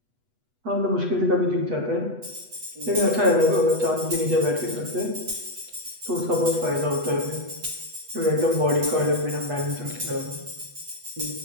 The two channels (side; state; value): left; late; 8.1 ms